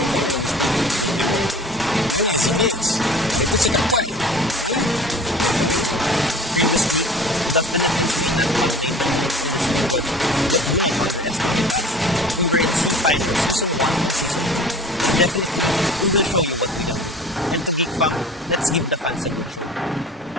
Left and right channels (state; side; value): normal; both; correlation 0.43